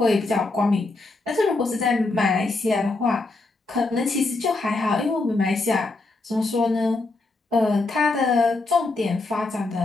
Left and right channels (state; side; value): quieter; right; 3.3 dB